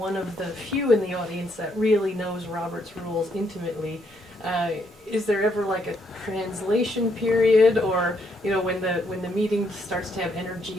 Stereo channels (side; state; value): both; normal; correlation 0.74